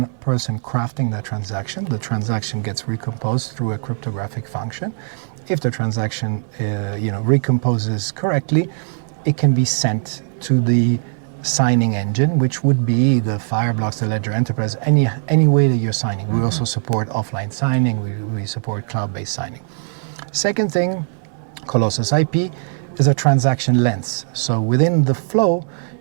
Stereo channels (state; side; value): silent; left; digital silence